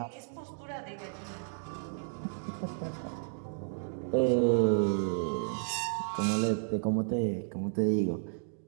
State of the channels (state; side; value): silent; left; digital silence